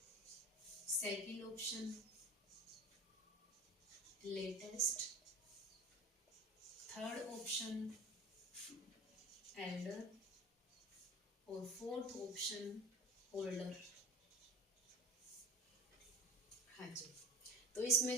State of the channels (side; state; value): both; normal; correlation 0.35